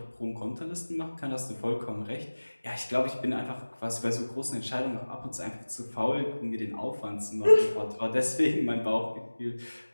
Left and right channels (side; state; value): both; inverted; correlation -1.00